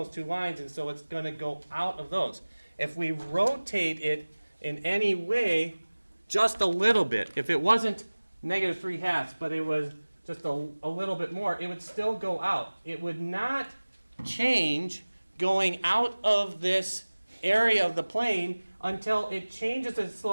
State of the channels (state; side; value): inverted; both; correlation -1.00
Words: two lines, and so it's going to go out of those. If we rotate it in any way, just a little bit, if it wasn't negative 3/2, but it was just a little bit more, it would still go out. It would not change going out of this area of the plane until it changes its